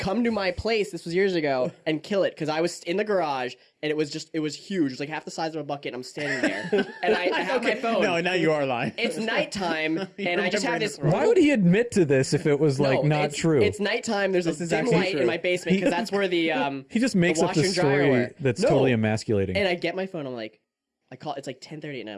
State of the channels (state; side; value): identical; both; correlation 1.00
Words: to my place. This was years ago, and kill it because I was in the garage and it was huge. It was like half the size of a bucket. And I'm standing there, and I have my phone. No, now you are lying. It's nighttime, and I just have this. Why would he admit to this if it was like No, not it's, true? It's nighttime. There's This a is dim actually light true. in my basement because that's where the He just makes the up washer the and dryer story were. that's No. totally emasculating. And I get my phone. I'm like, I call. It's like 10:30 at night. I'm